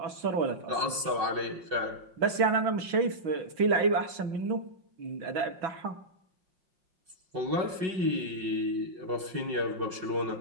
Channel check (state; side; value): late; left; 5.6 ms